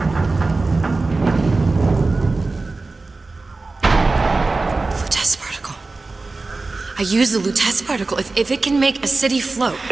Lutece particle. I use the Lutece particle. If it can make a city float.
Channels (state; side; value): quieter; left; 3.6 dB